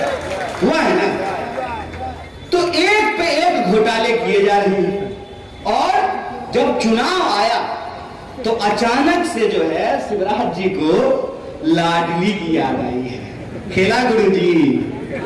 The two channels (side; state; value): both; identical; correlation 1.00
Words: हुआ है ना? तो एक पे एक घोटाले किए जा रहे हैं। और जब चुनाव आया तो अचानक से जो है शिवराज जी को लाडली की याद आई है। खेला गुरु जी,